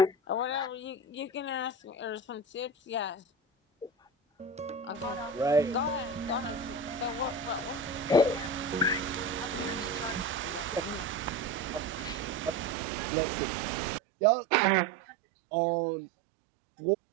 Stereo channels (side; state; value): left; drops out; at 12.8 s